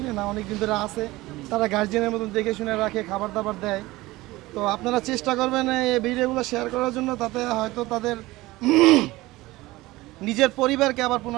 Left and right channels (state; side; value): quieter; left; 19.2 dB